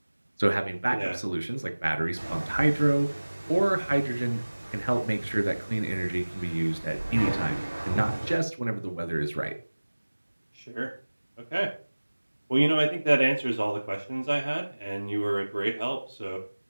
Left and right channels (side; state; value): both; inverted; correlation -1.00